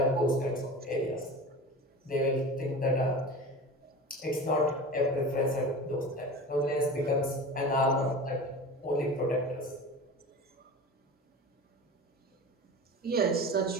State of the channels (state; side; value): normal; both; correlation 0.33